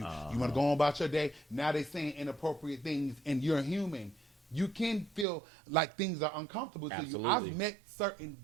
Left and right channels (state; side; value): drops out; left; at 5.2 s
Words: You want to go on about your day. Now they saying inappropriate things, and you're human. You can feel like things are uncomfortable to you. I've met certain